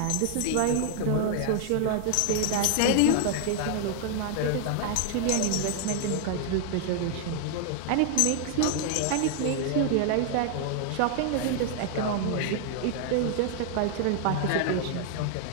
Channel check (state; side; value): different; both; correlation 0.00